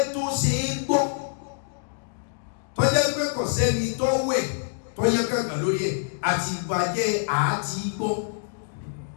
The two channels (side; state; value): right; silent; digital silence